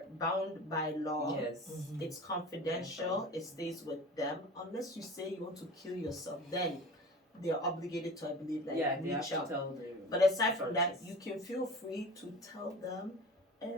bound by law. Yes. It's confidential. It stays with them. Unless you say you want to kill yourself, then they're obligated to, I believe, like Yeah, they have reach to out. tell the. But aside from that, you can feel free to tell them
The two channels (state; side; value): normal; both; correlation 0.37